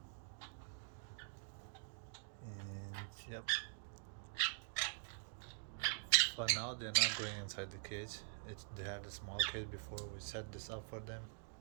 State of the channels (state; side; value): silent; left; digital silence